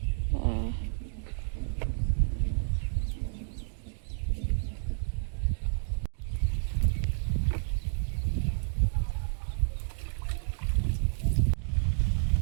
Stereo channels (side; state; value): left; silent; digital silence